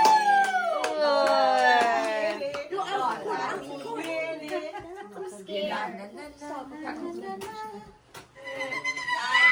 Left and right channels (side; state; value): both; identical; correlation 1.00